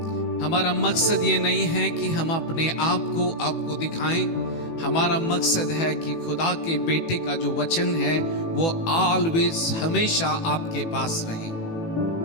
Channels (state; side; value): late; right; 18 ms